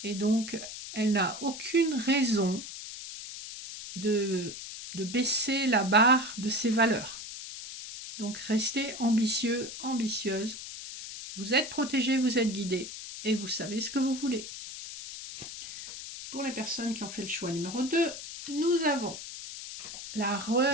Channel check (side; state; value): left; noise; hiss, 10 dB below the sound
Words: Et donc, elle n'a aucune raison de baisser la barre de ses valeurs. Donc, restez ambitieux, ambitieuse. Vous êtes protégé, vous êtes guidé et vous savez ce que vous voulez. Pour les personnes qui ont fait le choix numéro 2, nous avons la